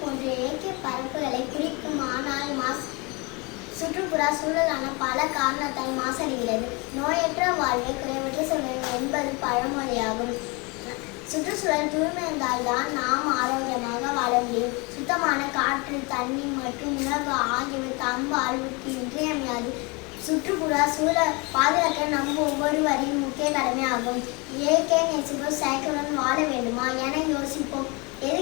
போன்ற இயற்கை பரப்புகளை குறிக்கும். ஆனால் சுற்றுப்புற சூழலான பல காரணத்தால் மாசடைகிறது. நோயற்ற வாழ்வே குறைவற்ற சூழல் என்பது பழமொழியாகும். சுற்றுச்சூழல் தூய்மை இருந்தால்தான் நாம் ஆரோக்கியமாக வாழ முடியும். சுத்தமான காற்று, தண்ணீர் மற்றும் உணவு ஆகியவை தம் வாழ்வுக்கு இன்றியமையாது. சுற்றுப்புற சூழல் பாதுகாக்க நம் ஒவ்வொருவரின் முக்கிய கடமையாகும். இயற்கை நேசிப்போம், செயற்கையுடன் வாழ வேண்டுமா என யோசிப்போம்.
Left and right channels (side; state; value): right; quieter; 28.6 dB